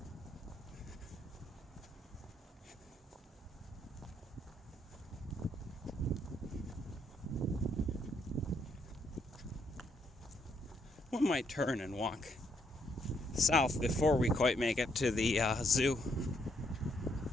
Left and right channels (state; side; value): normal; both; correlation 0.74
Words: One might turn and walk south before we quite make it to the zoo.